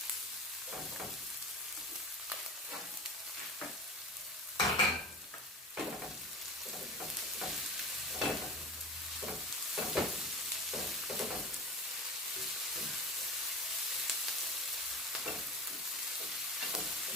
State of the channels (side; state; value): both; normal; correlation 0.31